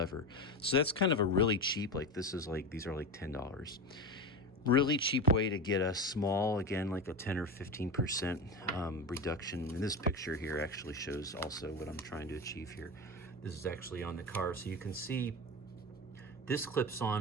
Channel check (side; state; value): both; normal; correlation 0.22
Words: So that's kind of a really cheap, like these are like $10. Really cheap way to get a small, again, like a 10 or 15% reduction. And this picture here actually shows also what I'm trying to achieve here. This is actually on the car, so you can see this clips